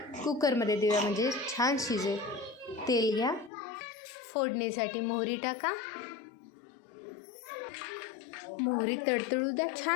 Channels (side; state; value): right; drops out; at 3.5 s